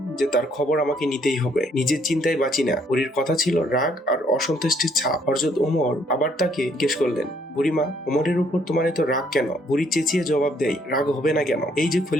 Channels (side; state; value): both; normal; correlation 0.67